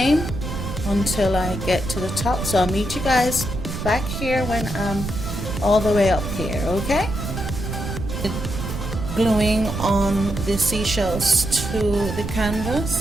until I get to the top. So I'll meet you guys back here when I'm all the way up here, okay? Gluing on the seashells to the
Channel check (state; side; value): noise; right; rumble, 5 dB below the sound